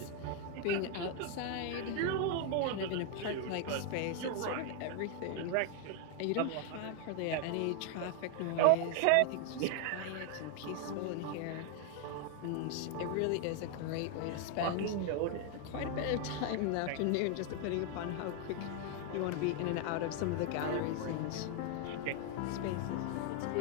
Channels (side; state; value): both; different; correlation 0.01